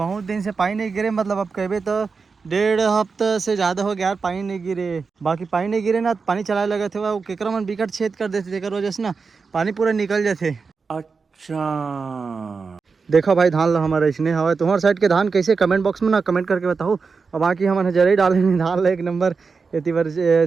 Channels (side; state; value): left; quieter; 4.9 dB